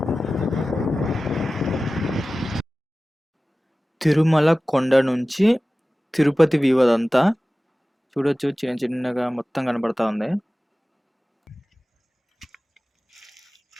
తిరుమల కొండ నుంచి తిరుపతి వ్యూ అదంతా చూడొచ్చు. చిన్న చిన్నగా మొత్తం కనపడతా ఉంది.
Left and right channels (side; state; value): both; normal; correlation 0.96